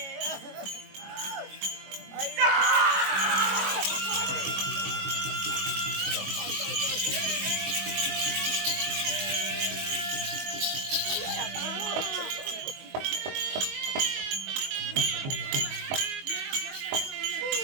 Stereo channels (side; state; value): left; late; 22 ms